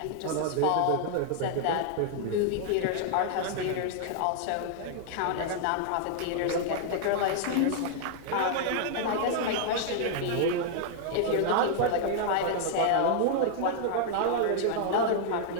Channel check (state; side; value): different; both; correlation 0.00